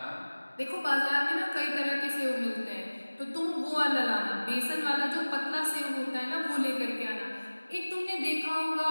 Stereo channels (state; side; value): inverted; both; correlation -1.00